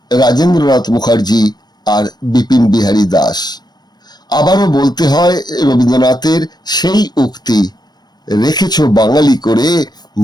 রাজেন্দ্রনাথ মুখার্জি আর বিপিন বিহারী দাস। আবারও বলতে হয় রবীন্দ্রনাথের সেই উক্তি, রেখেছ বাঙালি করে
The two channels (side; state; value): right; late; 0.20 ms